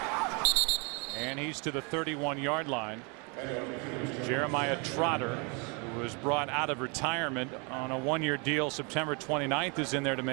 and he's to the 31-yard line. Jeremiah Trotter, who was brought out of retirement on a 1-year deal September 29th, is in there to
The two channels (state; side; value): quieter; left; 32.7 dB